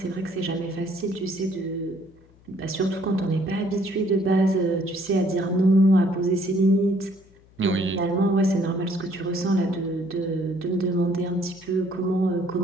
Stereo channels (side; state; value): left; noise; hum, 28 dB below the sound